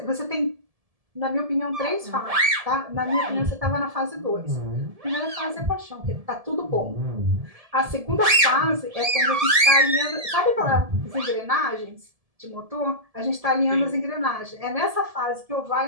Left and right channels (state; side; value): late; left; 1.7 ms